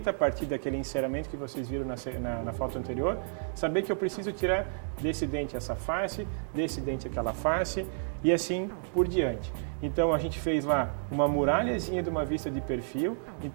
a partir daquele enceramento que vocês viram na foto anterior, saber que eu preciso tirar desse dente essa face, desse dente aquela face e assim por diante. Então a gente fez lá uma muralhazinha de uma vista de perfil.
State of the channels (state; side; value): silent; left; digital silence